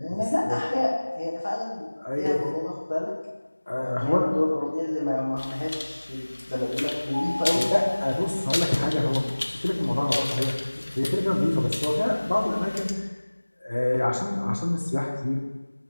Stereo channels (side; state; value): both; inverted; correlation -1.00